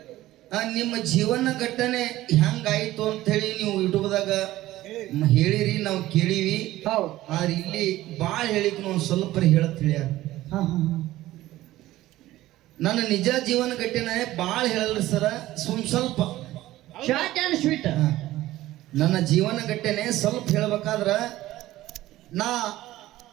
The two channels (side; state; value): left; quieter; 15.8 dB